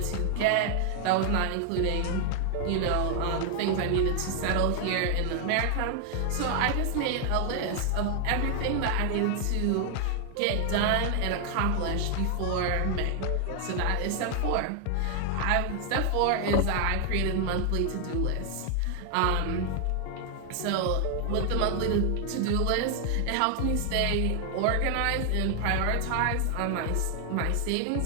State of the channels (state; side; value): different; both; correlation 0.00